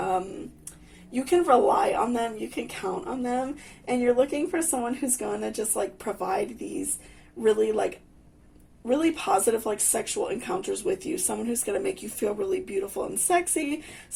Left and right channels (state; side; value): identical; both; correlation 1.00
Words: you can rely on them, you can count on them, and you're looking for someone who's going to just like provide these really positive like sexual encounters with you, someone who's going to make you feel really beautiful and sexy,